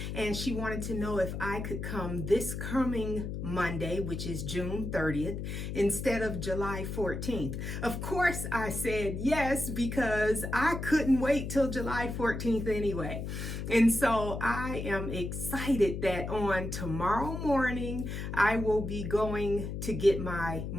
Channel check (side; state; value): left; noise; hum, 5 dB below the sound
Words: and she wanted to know if I could come this coming Monday, which is June 30th, instead of July 14th. Of course, I said yes, because I couldn't wait till July 14th anyway. And so I am excited that on tomorrow morning, I will be going to get my